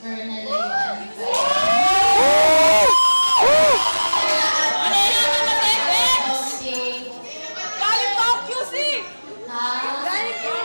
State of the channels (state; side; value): inverted; both; correlation -1.00